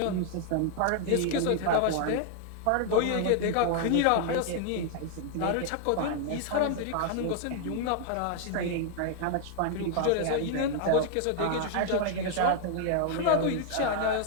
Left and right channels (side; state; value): both; different; correlation 0.00